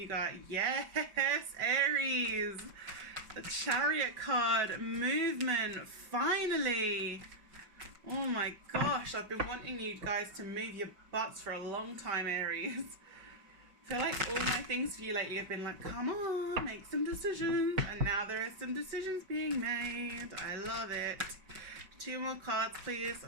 got, yes, Aries. The Chariot card, movement, finally. Oh my gosh, I've been wanting you guys to move your butts for a long time, Aries. I feel like all my things for you lately have been like, come on, make some decisions. And now there are some decisions being made. I love it. 2 more cards, please,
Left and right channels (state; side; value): late; left; 5.3 ms